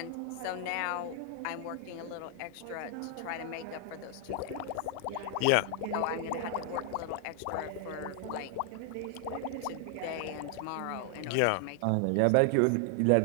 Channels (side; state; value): both; different; correlation 0.00